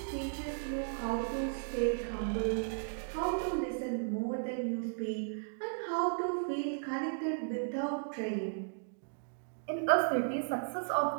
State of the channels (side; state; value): left; silent; digital silence